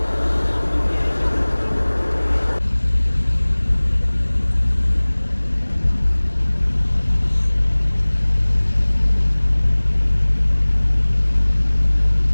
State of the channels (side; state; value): both; inverted; correlation -1.00